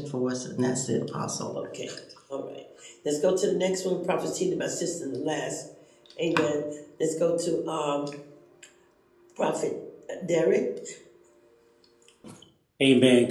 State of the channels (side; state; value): both; identical; correlation 1.00